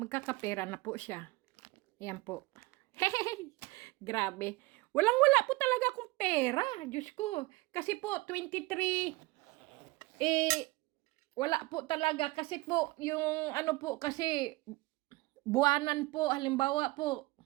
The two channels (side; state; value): left; quieter; 22.3 dB